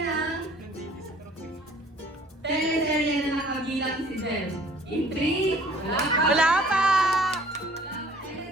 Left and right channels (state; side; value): normal; both; correlation 0.54